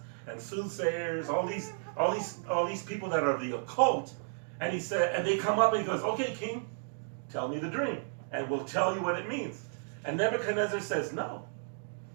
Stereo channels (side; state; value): left; silent; digital silence